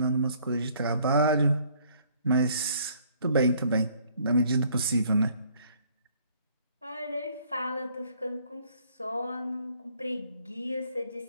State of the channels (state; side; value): inverted; both; correlation -0.61